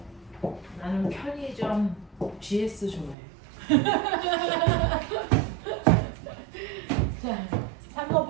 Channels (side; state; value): left; drops out; at 3.2 s